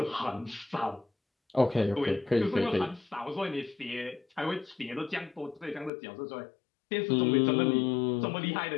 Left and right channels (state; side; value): drops out; right; at 5.9 s